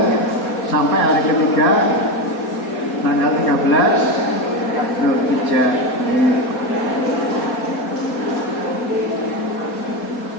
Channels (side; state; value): right; late; 4.2 ms